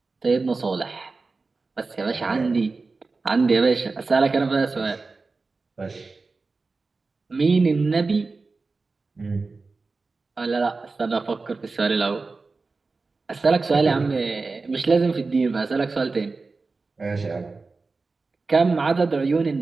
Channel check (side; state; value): left; quieter; 3.9 dB